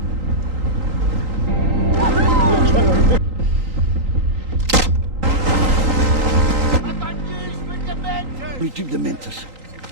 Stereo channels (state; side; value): late; left; 3.8 ms